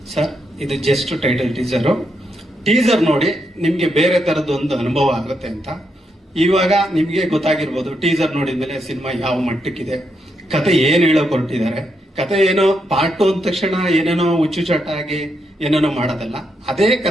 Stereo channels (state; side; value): normal; both; correlation 0.81